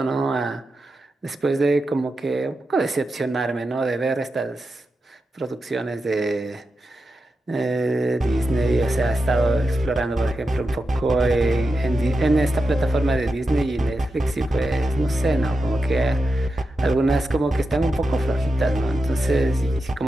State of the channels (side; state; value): both; normal; correlation 0.90